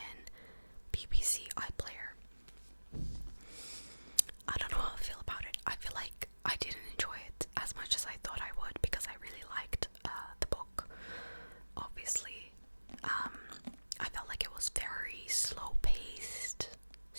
BBC iPlayer. I don't know how I feel about it. I feel like I didn't enjoy it as much as I thought I would because I really liked the book, obviously. I felt like it was very slow paced,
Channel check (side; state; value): both; inverted; correlation -1.00